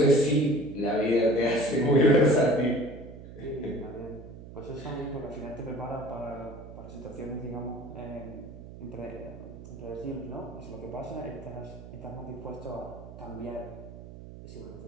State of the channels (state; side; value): noise; right; hum, 14 dB below the sound